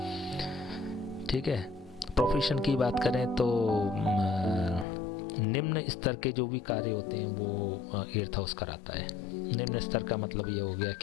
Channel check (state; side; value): drops out; right; at 4.9 s